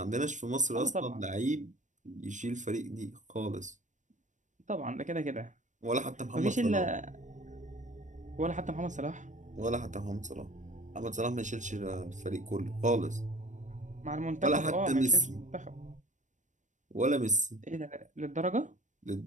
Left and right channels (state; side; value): late; left; 0.35 ms